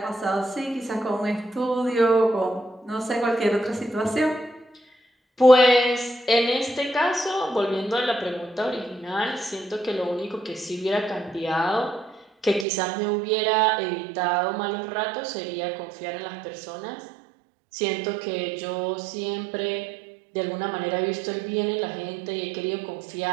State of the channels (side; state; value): left; drops out; at 12.7 s